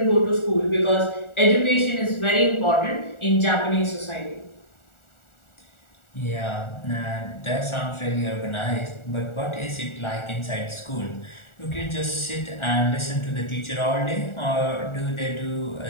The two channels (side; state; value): right; late; 1.4 ms